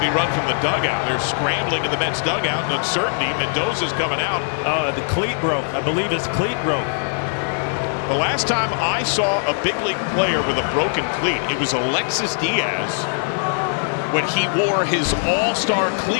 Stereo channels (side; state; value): right; silent; digital silence